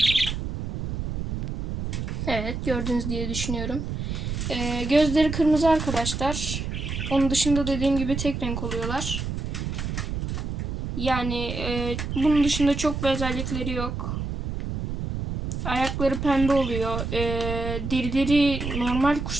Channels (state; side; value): noise; right; rumble, 4 dB below the sound